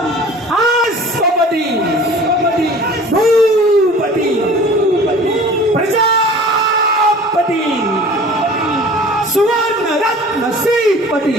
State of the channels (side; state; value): both; normal; correlation 0.44